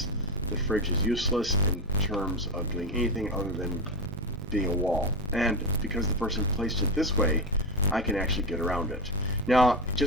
the fridge is useless in terms of doing anything other than being a wall. And because the person placed it this way, I can actually get around it. Now,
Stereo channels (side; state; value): both; normal; correlation 0.16